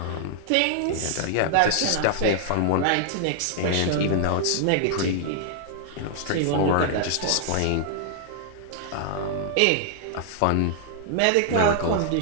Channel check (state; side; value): different; both; correlation 0.00